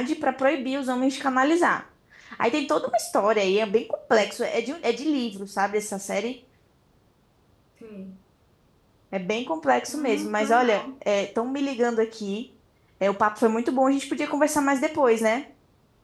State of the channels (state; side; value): identical; both; correlation 1.00